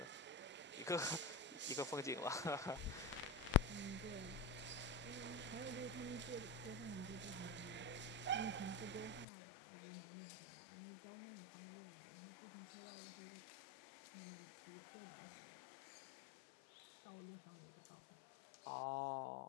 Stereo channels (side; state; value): right; drops out; at 9.2 s